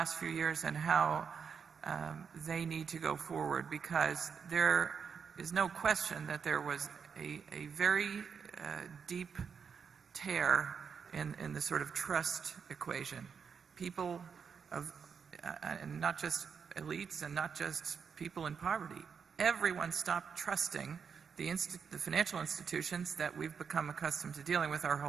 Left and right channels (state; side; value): quieter; left; 6.5 dB